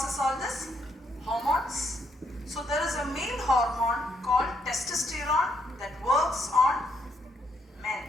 all this? Hormones. So, there is a male hormone called testosterone that works on men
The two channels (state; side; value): normal; both; correlation 0.74